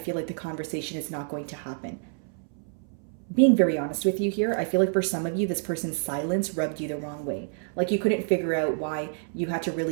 like the conversation is not going to happen. Being very honest with you here, I feel like for some of you, this person's silence rubbed you the wrong way. Like you couldn't figure out why you had to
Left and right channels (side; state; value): left; silent; 60 dB below the other